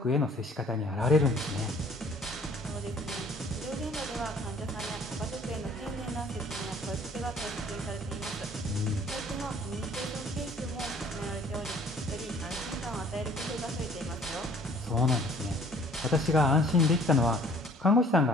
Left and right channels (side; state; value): both; normal; correlation 0.55